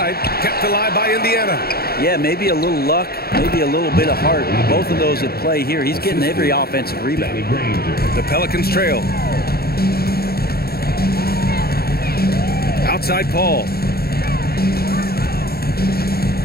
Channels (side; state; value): right; late; 0.45 ms